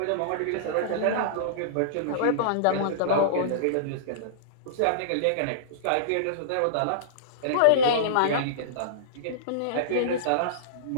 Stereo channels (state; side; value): different; both; correlation -0.03